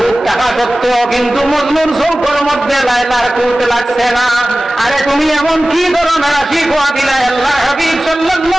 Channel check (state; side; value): normal; both; correlation 0.97